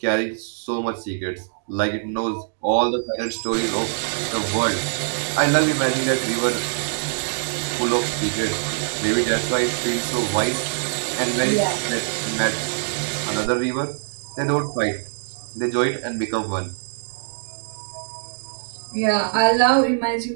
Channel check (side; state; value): left; silent; digital silence